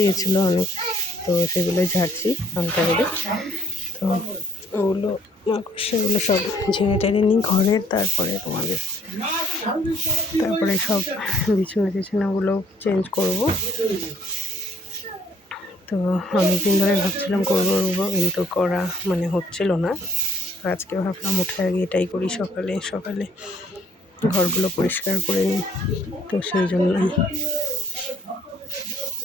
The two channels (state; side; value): normal; both; correlation 0.62